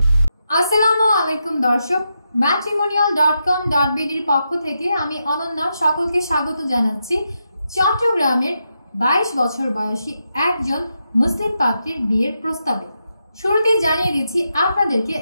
আসসালামু আলাইকুম দর্শক, matrimonial.com.bd এর পক্ষ থেকে আমি অনন্যা সকলকে স্বাগত জানাচ্ছি চট্টগ্রামের 22 বছর বয়সী একজন মুসলিম পাত্রীর বিয়ের প্রস্তাবে। শুরুতেই জানিয়ে দিচ্ছি আপনাদেরকে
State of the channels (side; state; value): both; inverted; correlation -0.85